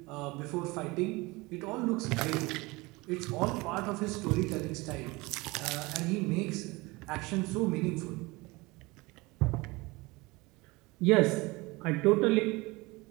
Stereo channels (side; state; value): left; quieter; 23.3 dB